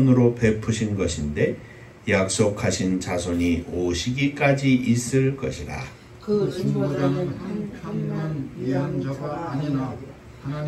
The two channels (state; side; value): identical; both; correlation 1.00